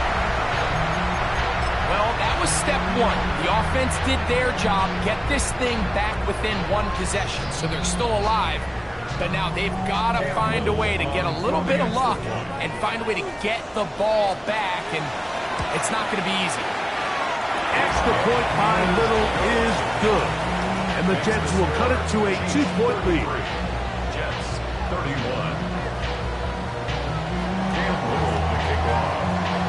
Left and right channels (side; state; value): both; identical; correlation 1.00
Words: Well, that was step one. The offense did their job, get this thing back within one possession, so they're still alive. But now they've got to find a way to get a little bit of luck and find a way to get the ball back, and it's not going to be easy. Extra point by Little is good. And the Jets will cut it to a 2-point lead. Jets 31. Cam Little to kick